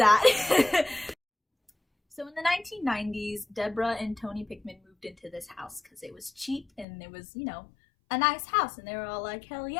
So in the 1990s, Deborah and Tony Pickman moved into this house because it was cheap and it was, you know, a nice house, and they were all like, hell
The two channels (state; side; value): drops out; right; at 6.9 s